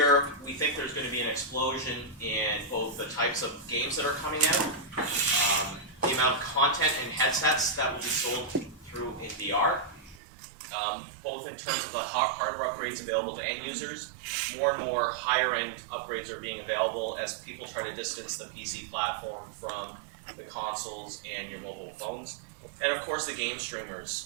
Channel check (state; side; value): drops out; left; at 10.2 s